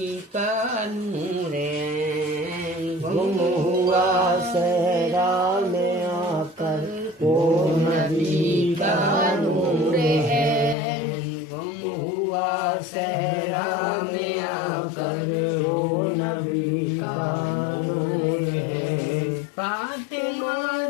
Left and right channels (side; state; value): right; drops out; at 10.8 s